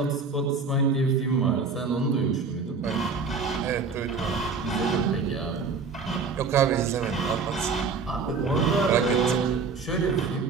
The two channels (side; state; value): left; quieter; 4.9 dB